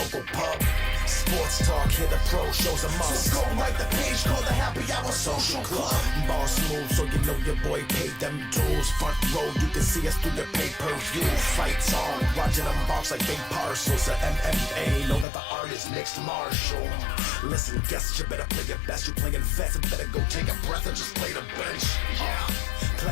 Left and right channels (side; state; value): right; drops out; at 15.2 s